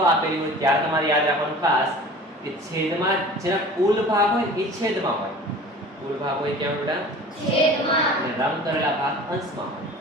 આપેલી હોય ત્યારે તમારે યાદ રાખવાનું ખાસ કે છેદમાં જેના કુલ ભાગ હોય એ છેદમાં હોય. કુલ ભાગ હોય ક્યાં બેટા? છેદમાં. અને રંગ કરેલા ભાગ અંશમાં હોય.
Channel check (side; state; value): both; normal; correlation 0.42